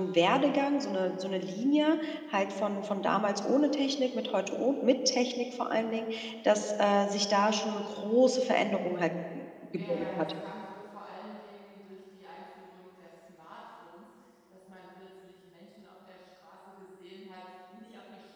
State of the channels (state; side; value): identical; both; correlation 1.00